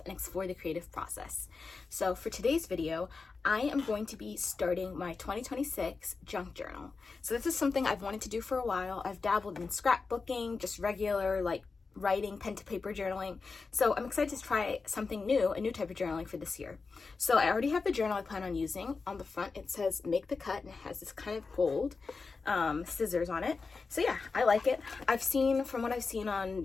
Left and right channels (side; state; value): right; quieter; 4.4 dB